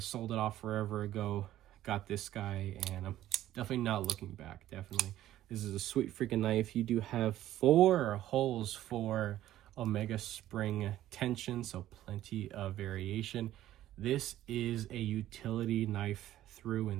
it off forever ago. Got this guy, and I'm definitely not looking back. Definitely. This is a sweet freaking knife. You do have 4 holes for Omega spring tension, so plenty of variation. This is a utility knife through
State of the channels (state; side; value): quieter; left; 13.5 dB